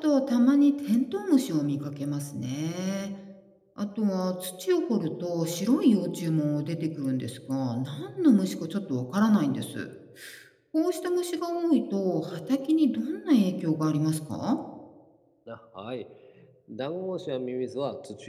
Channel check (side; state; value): both; identical; correlation 1.00